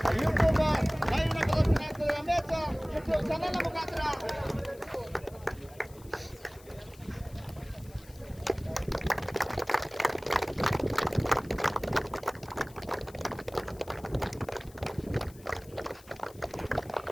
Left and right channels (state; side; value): noise; left; hiss, 23 dB below the sound